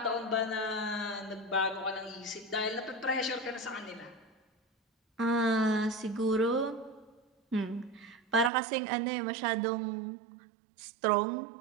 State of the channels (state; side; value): drops out; left; at 8.5 s